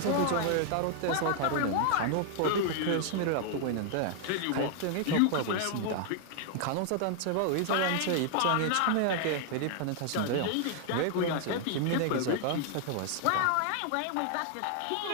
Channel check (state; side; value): different; both; correlation 0.00